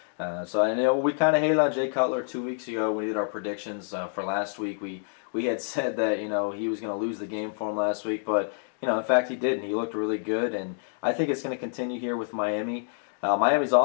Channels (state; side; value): silent; right; digital silence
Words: So I know we kind of hated on Jay Cutler 2 weeks ago. We did our predictions for last week. We had said that he was going to lose the game for him last week, but in fact he didn't. He looked really good, and I think it's going to continue here with Miami. Miami's